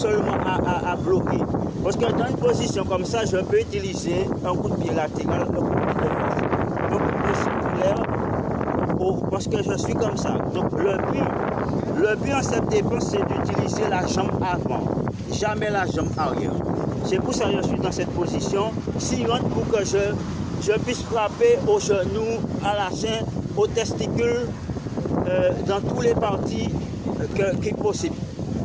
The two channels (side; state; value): both; identical; correlation 1.00